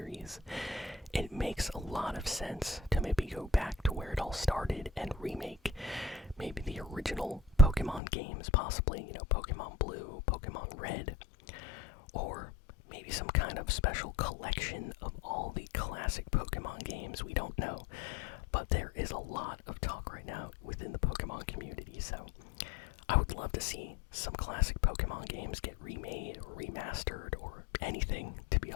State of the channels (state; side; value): drops out; right; at 8.0 s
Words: It makes a lot of sense to maybe go back to where it all started and remake maybe the original Pokemon games, possibly, Pokemon Blue, Pokemon Red, or maybe some kind of special collection of all the classic Pokemon games. We don't know, but there is a lot of talk right now within the Pokemon community, so I would love to see some classic Pokemon games get remade or remastered or anything, to be